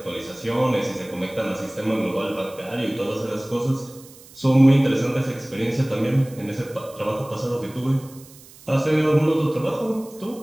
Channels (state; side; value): noise; right; hiss, 22 dB below the sound